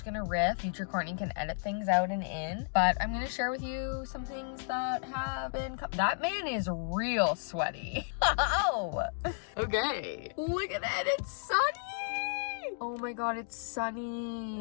going to riff. Future Courtney can edit things out and in, but I'm going to share with you some things that have been... That man is real sweaty. Oh, okay. Look at that. It's sunny. Oh my god, it's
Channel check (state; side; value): silent; right; digital silence